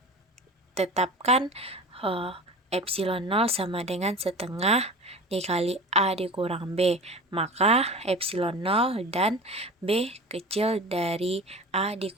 tetapkan epsilon 0 sama dengan setengah dikali A dikurang B, maka epsilon 0 dan B kecil dari A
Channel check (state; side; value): normal; both; correlation 0.35